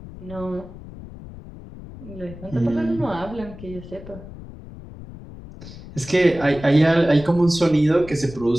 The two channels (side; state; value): left; noise; rumble, 15 dB below the sound